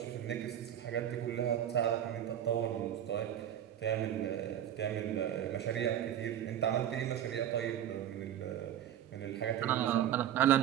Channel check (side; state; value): left; quieter; 10.7 dB